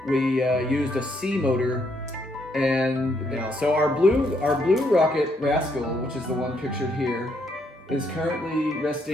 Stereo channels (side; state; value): both; normal; correlation 0.73